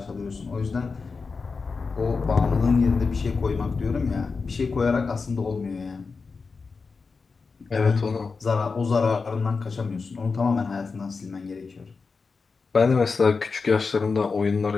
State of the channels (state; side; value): quieter; right; 4.6 dB